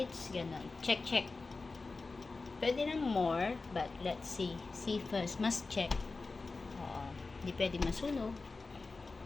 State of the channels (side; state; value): right; quieter; 3.8 dB